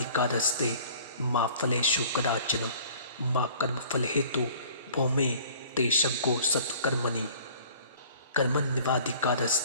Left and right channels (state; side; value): inverted; both; correlation -0.50